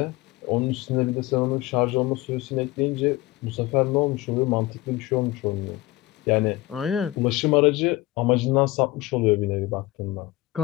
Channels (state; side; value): quieter; right; 18.4 dB